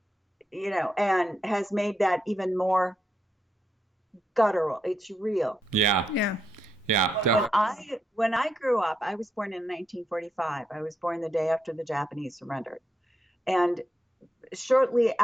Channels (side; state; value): both; normal; correlation 0.82